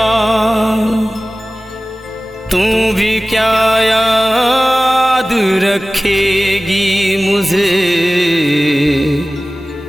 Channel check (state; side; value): normal; both; correlation 0.97